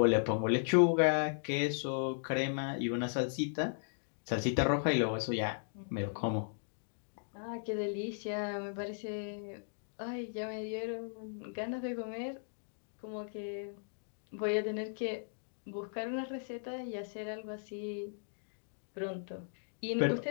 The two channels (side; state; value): right; silent; digital silence